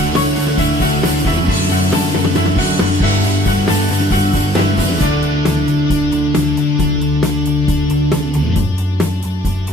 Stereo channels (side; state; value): both; normal; correlation 0.59